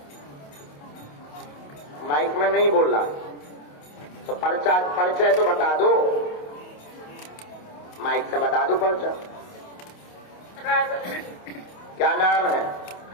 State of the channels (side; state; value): right; late; 28 ms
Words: माइक में नहीं बोल रहा तो परिचय तो बता दो, माइक से बता दो परिचय। क्या नाम है?